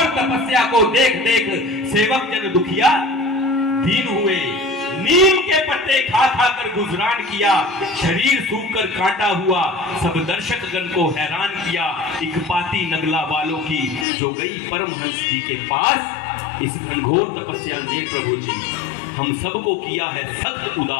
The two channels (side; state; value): right; drops out; at 14.1 s